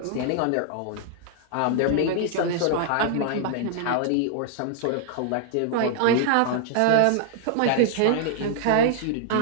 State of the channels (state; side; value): different; both; correlation -0.01